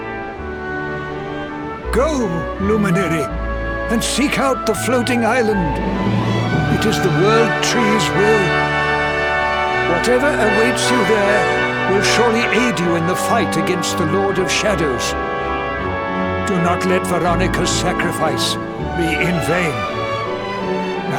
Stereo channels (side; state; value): both; identical; correlation 1.00